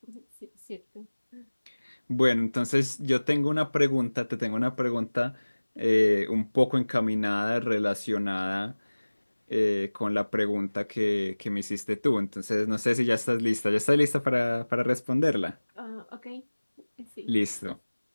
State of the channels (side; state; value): both; inverted; correlation -1.00